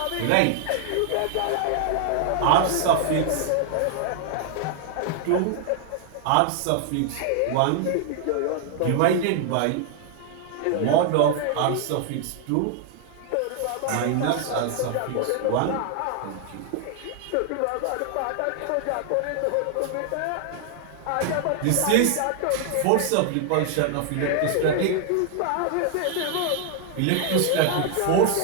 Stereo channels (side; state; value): both; different; correlation 0.00